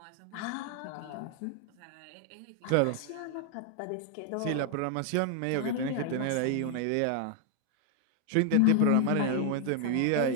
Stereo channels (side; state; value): both; different; correlation 0.00